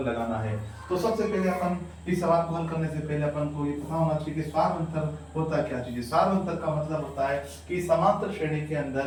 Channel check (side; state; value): both; identical; correlation 1.00